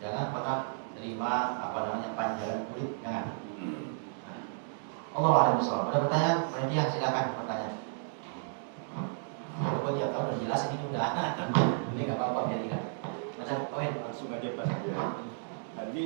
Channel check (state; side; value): silent; left; digital silence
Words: Jangan pernah terima panjangan kulit, jangan. Allah a'lam bishawab. Ada pertanyaan? Panitia silakan bertanya. Kalau tiap tahun udah jelas ini udah. Ini nggak apa-apa biar ingat. Macam poin Langsung aja Pak. Tadi